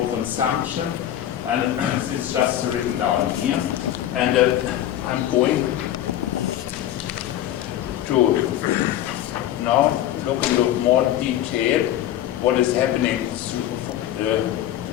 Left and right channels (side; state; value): right; quieter; 12.2 dB